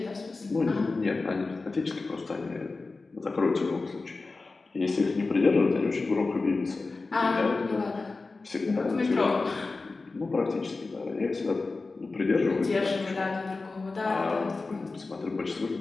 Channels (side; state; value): right; quieter; 3.7 dB